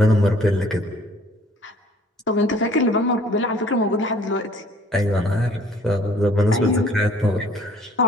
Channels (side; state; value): both; normal; correlation 0.55